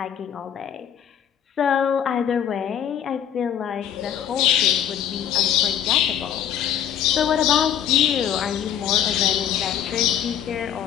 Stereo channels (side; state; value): right; quieter; 9.6 dB